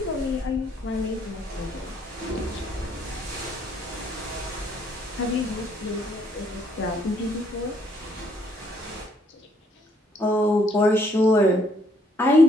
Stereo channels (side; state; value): both; normal; correlation 0.68